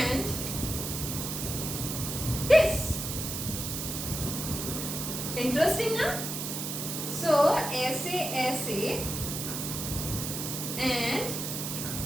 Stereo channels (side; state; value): right; noise; hiss, 4 dB below the sound